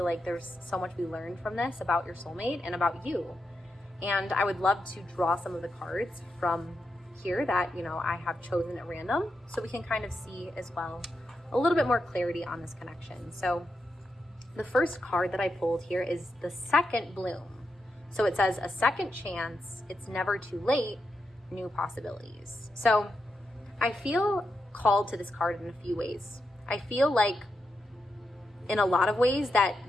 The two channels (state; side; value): normal; both; correlation 0.86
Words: like there's so much we learned from this about your soulmate and about you. And I would love to draw some of the cards from here that, you know, I have chosen at random, so we can kind of see as well a little bit more clarity on this connection. So the first card that I pulled here is the second bloom. So it says, a second chance, it's never too late, new possibilities. So I feel called to this card in a few ways. I feel like in a lot of ways that